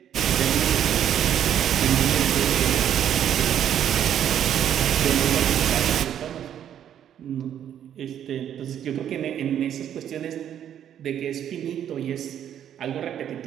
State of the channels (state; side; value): quieter; left; 9.9 dB